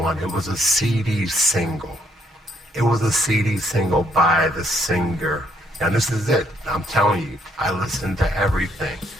It was a CD single. It was a CD single by the singer. Now this is it. I'm telling you, I listened to everything.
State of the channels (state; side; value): normal; both; correlation 0.70